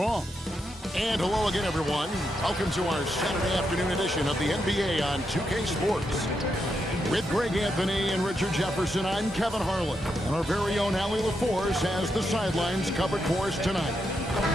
And hello again, everyone. Welcome to our Saturday afternoon edition of the NBA on 2K Sports. With Greg Anthony and Richard Jefferson, I'm Kevin Harlan. And our very own Allie LaForce has the sidelines covered for us tonight.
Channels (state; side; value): normal; both; correlation 0.83